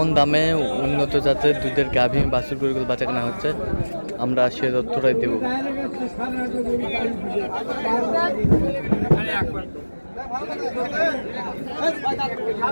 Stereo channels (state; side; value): inverted; both; correlation -1.00